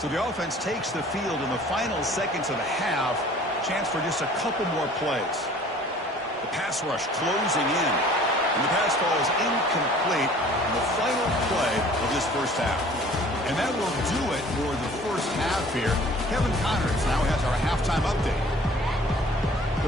So the offense takes the field in the final seconds of the half. Chance for just a couple more plays. The pass rush closing in. And the pass falls incomplete in the final play of this first half. And that will do it for the first half here. Kevin Connors now has our halftime update.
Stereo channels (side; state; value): both; normal; correlation 0.50